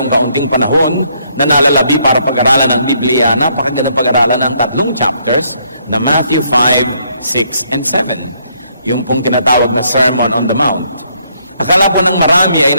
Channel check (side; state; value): both; inverted; correlation -0.71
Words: kaunting panahon na nalalabi para pag-aralan ng Biblia, napakagandang pag-aralan ng 3 chapters na Matthew 5, 6, and 7. Yung pong tinatawag na Sermon on the Mount. Akala po ng marami ay